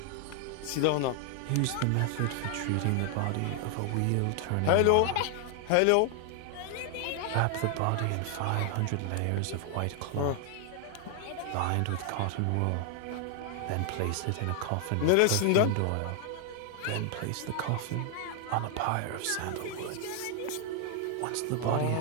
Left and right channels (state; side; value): different; both; correlation 0.00